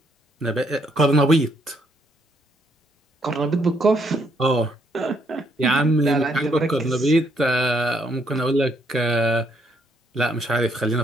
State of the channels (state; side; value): normal; both; correlation 0.72